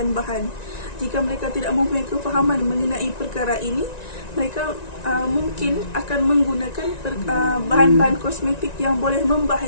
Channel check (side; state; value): right; late; 1.9 ms